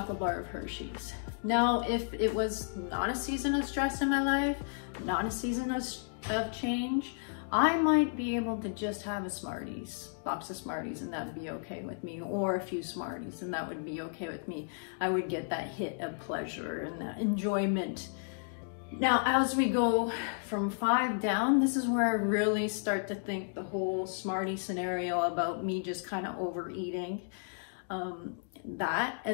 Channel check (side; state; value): right; silent; digital silence